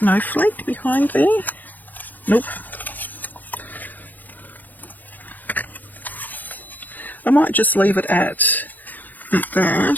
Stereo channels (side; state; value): right; late; 0.087 ms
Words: behind there? Nope. I might just leave it at